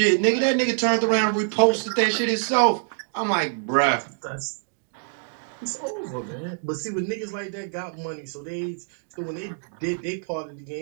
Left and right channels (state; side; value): silent; left; digital silence